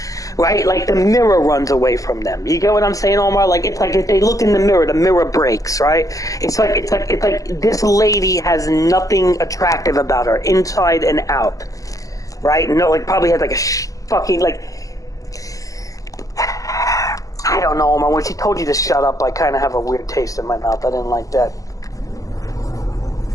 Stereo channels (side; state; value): right; late; 0.16 ms